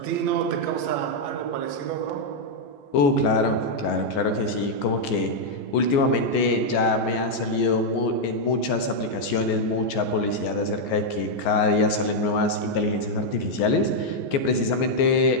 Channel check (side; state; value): right; late; 14 ms